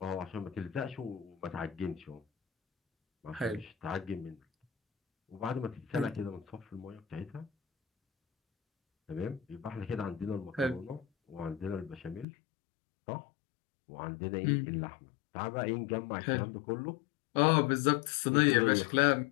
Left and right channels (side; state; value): right; drops out; at 12.2 s